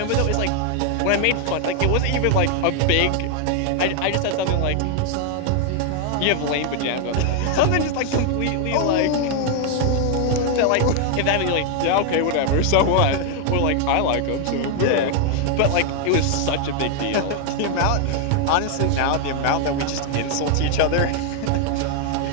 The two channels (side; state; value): both; different; correlation 0.00